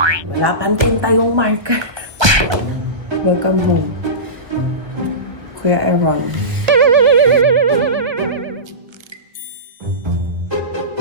Wala pang tinta yung marker. Welcome home. Kuya Aaron.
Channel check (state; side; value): late; left; 1.2 ms